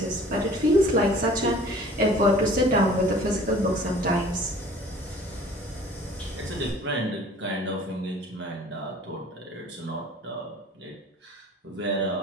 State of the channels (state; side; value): normal; both; correlation 0.49